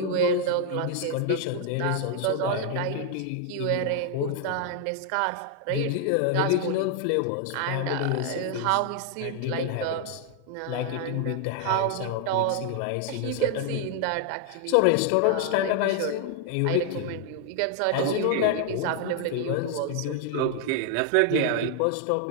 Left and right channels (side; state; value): both; different; correlation 0.00